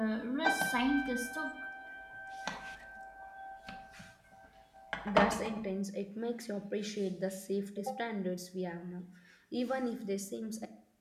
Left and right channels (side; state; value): both; identical; correlation 1.00